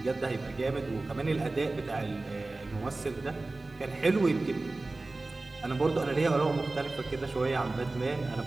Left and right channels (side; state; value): left; quieter; 3.2 dB